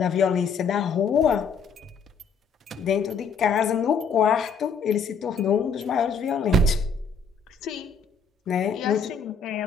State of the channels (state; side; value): quieter; right; 5.3 dB